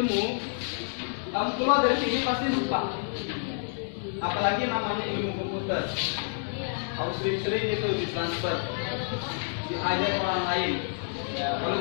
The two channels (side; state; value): right; silent; digital silence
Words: kamu keluar dari sini pasti lupa. Apalagi namanya ilmu komputer. Kamu sering-sering itu ditransfer, diajar orang lain. Kalau